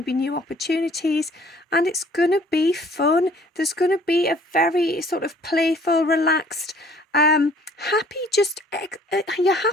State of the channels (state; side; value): normal; both; correlation 0.56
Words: be new opportunities and it's going to be fun. There's going to be a very sort of playful, relaxed, you're